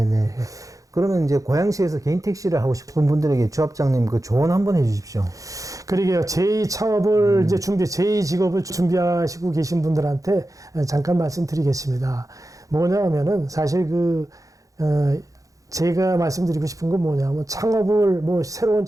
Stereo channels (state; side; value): late; left; 0.16 ms